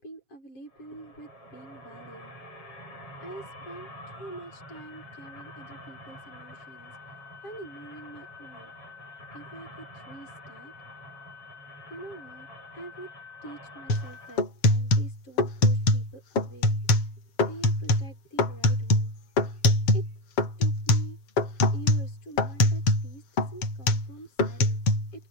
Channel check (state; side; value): late; right; 7.1 ms